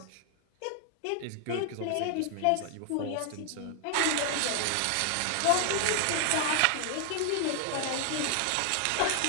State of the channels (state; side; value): different; both; correlation 0.00